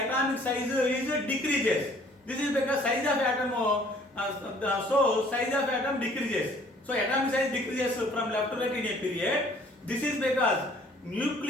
size is decreases. This is because size of atom size of atom decreases. So atomic size decreases from left to right in a period. This is because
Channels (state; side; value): normal; both; correlation 0.57